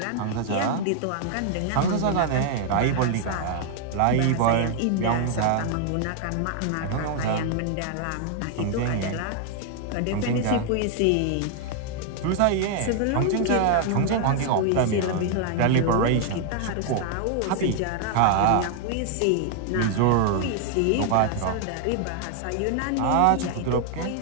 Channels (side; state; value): both; different; correlation 0.00